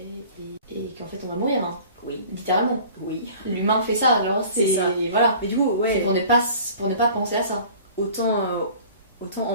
et qu'en fait on va mourir. Hein. Oui. Littéralement. Oui. L'humain fait ça, alors c'est ça. Voilà. Mais du coup, c'est pour ne pas penser à ça. Autant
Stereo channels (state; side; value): inverted; both; correlation -0.46